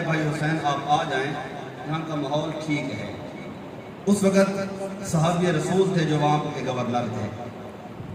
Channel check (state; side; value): identical; both; correlation 1.00